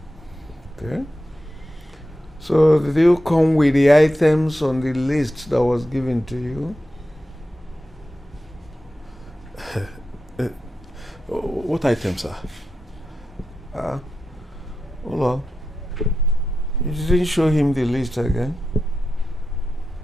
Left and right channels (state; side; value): normal; both; correlation 0.90